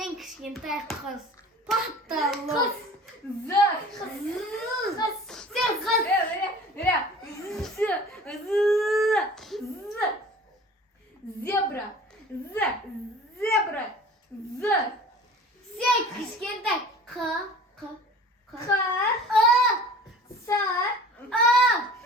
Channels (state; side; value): normal; both; correlation 0.44